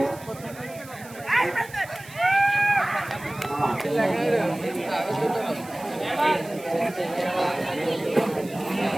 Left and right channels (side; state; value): right; noise; hiss, 19 dB below the sound